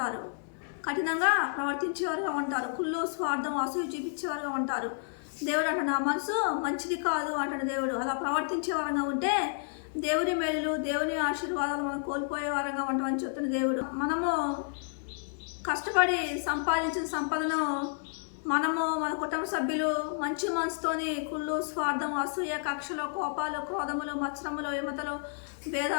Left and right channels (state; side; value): silent; right; digital silence